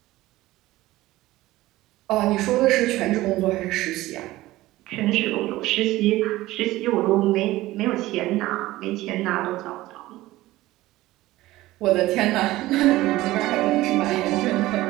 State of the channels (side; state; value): left; quieter; 17.2 dB